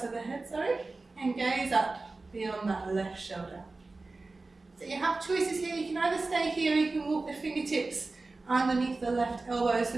of the head, and gaze up beyond that left shoulder. So you have choices here. You can either stay here, or you can walk the fingertips underneath the left elbow so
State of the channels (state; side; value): quieter; left; 3.5 dB